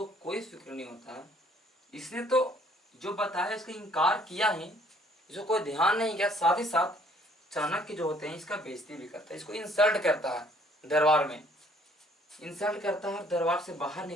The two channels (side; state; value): both; normal; correlation 0.61